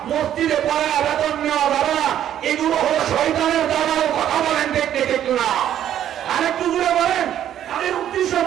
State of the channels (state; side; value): quieter; left; 10.8 dB